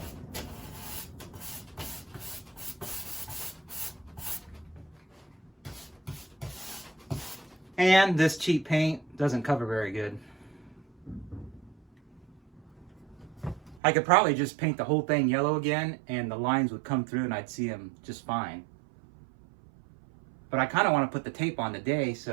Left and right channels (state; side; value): drops out; left; at 13.8 s